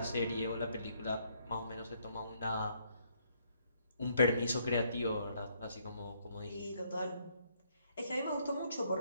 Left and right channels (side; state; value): both; inverted; correlation -0.70